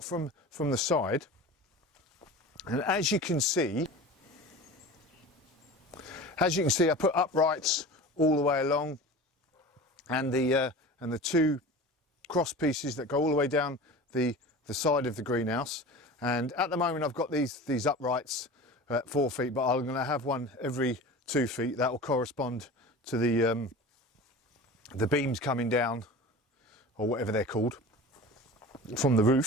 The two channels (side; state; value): both; normal; correlation 0.35